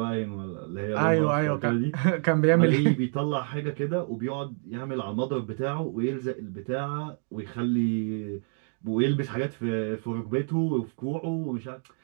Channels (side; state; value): left; silent; 59 dB below the other